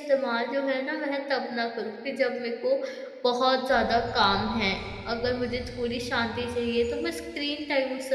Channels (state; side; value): identical; both; correlation 1.00